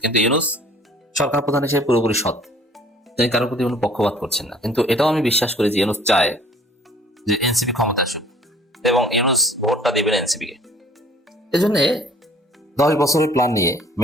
কিন্তু ইউনূস সরকার প্রধান হিসেবে পুরোপুরি সৎ, তিনি কারোর প্রতি কোনো পক্ষপাত করছেন না। কিন্তু এটাও আমি বিশ্বাস করি যে ইউনূস চায় যে এনসিপি ক্ষমতা আসুক এবং ইউনূস ভোটটা দিবেন এনসিপি কে। এজন্য 10 বছরের প্ল্যান নিয়ে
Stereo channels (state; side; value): normal; both; correlation 0.54